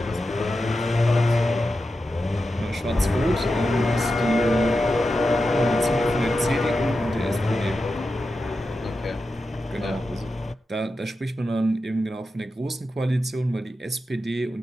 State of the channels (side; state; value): both; normal; correlation 0.90